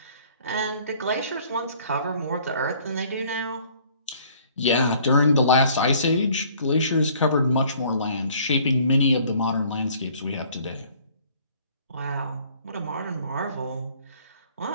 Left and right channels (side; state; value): both; inverted; correlation -0.57